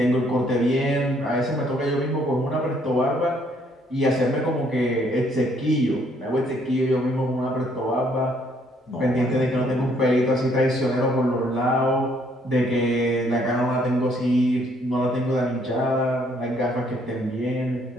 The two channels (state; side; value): normal; both; correlation 0.66